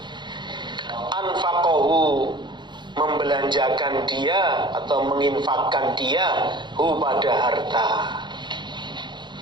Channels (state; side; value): late; left; 0.22 ms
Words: anfaqahu, membelanjakan dia atau menginfakkan dia, hu, pada harta.